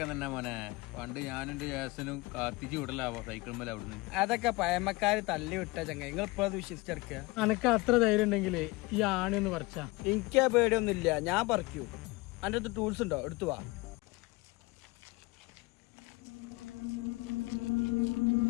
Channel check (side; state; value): right; quieter; 23.3 dB